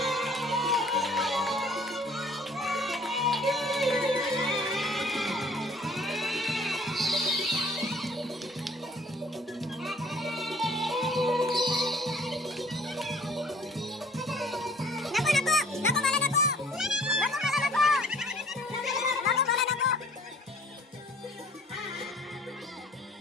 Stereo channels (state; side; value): normal; both; correlation 0.54